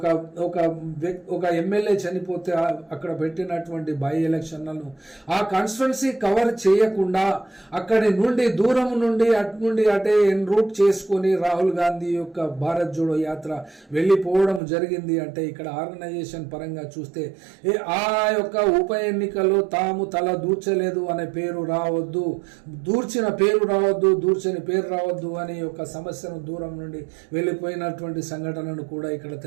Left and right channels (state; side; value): drops out; left; at 14.6 s